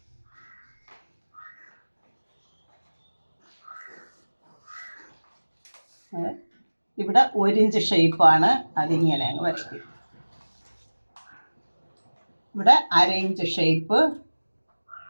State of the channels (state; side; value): inverted; both; correlation -1.00